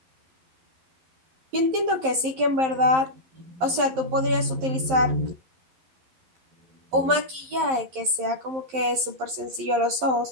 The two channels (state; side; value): late; left; 11 ms